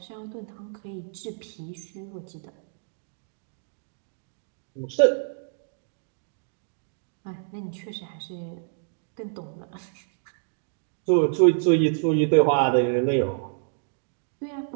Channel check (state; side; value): silent; left; digital silence